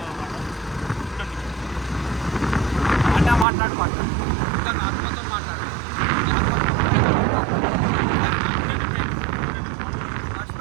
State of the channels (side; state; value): left; drops out; at 3.5 s